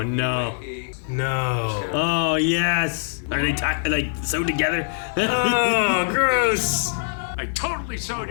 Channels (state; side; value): silent; right; digital silence